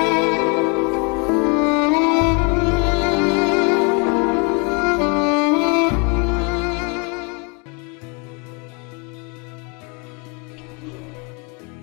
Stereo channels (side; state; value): right; quieter; 32.8 dB